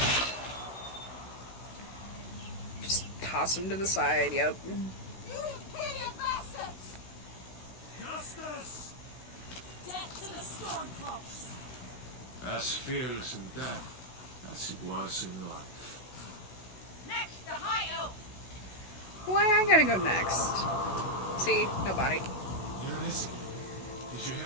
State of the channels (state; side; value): late; right; 16 ms